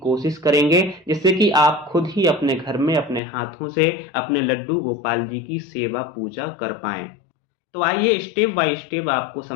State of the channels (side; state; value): right; drops out; at 3.2 s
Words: करेंगे, जिससे कि आप खुद ही अपने घर में अपने हाथों से अपने लड्डू गोपाल जी की सेवा पूजा कर पाएं। तो आइए स्टेप बाय स्टेप आपको